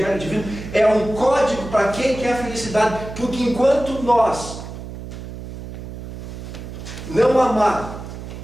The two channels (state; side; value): noise; right; hum, 10 dB below the sound